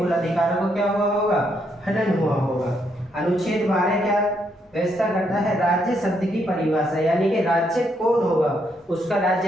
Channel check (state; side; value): normal; both; correlation 0.75